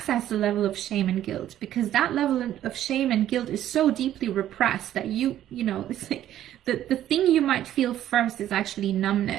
the level of shame and guilt, because that level of shame and guilt is so deeply repressed that it's like the thing you might feel first is actually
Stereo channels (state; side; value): quieter; left; 12.0 dB